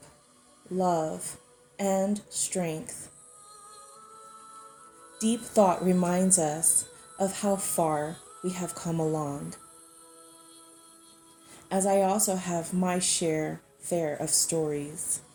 love, and strength. Deep thought reminds us of how far we have come along, as I also have my fair of stories.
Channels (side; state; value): both; identical; correlation 1.00